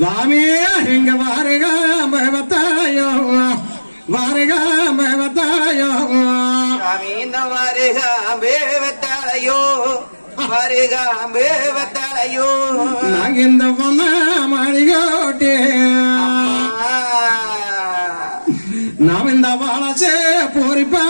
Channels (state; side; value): inverted; both; correlation -1.00